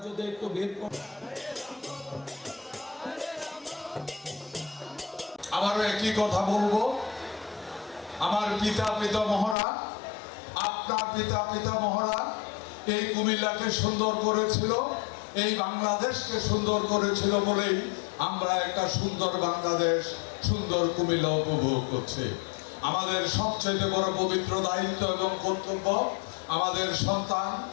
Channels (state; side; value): drops out; right; at 9.6 s